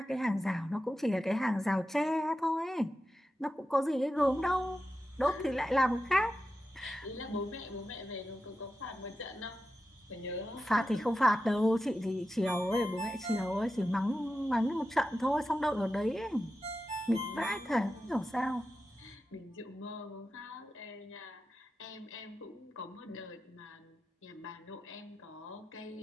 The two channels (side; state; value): both; normal; correlation 0.91